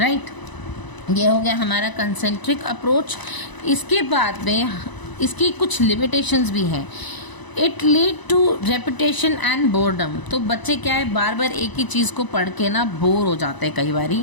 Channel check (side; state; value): right; late; 1.0 ms